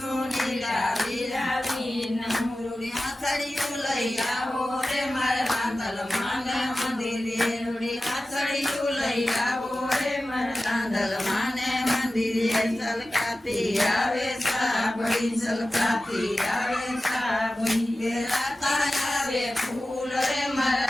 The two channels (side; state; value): both; normal; correlation 0.95